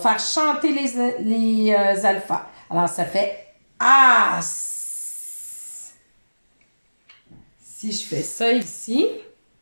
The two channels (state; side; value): inverted; both; correlation -1.00